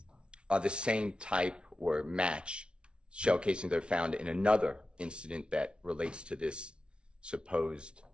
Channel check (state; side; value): late; left; 0.057 ms